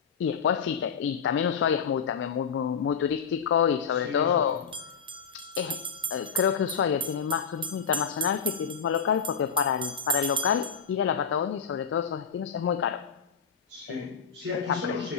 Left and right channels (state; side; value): quieter; right; 6.5 dB